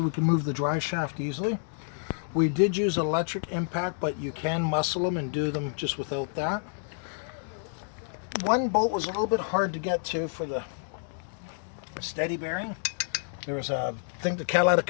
we can move the drive shaft easily. We did use electric impact, but you can muscle them and do them just without that. One bolt was a little bit hard to get to for the steady bearing. There was I think the catalytic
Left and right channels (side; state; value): right; silent; digital silence